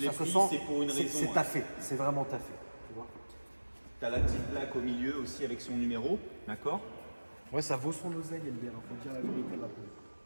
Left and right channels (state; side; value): inverted; both; correlation -1.00